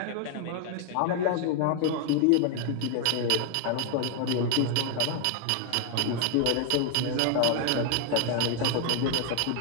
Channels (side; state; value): both; different; correlation 0.00